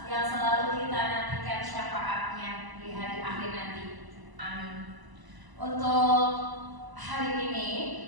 yang selalu kita nantikan syafaatnya di hari akhir nanti. Amin. Untuk hari ini,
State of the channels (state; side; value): late; left; 1.0 ms